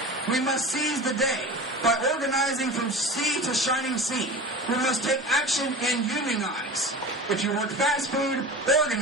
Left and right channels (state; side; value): normal; both; correlation 0.34